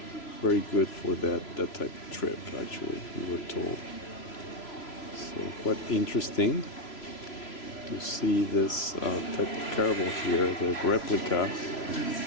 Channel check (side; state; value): right; late; 3.0 ms